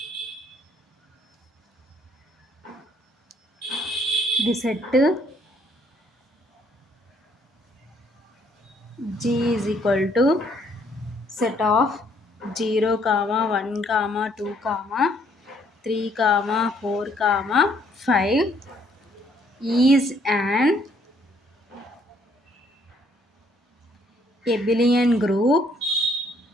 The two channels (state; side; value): normal; both; correlation 0.66